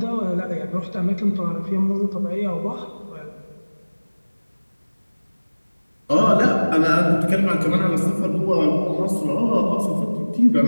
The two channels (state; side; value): inverted; both; correlation -1.00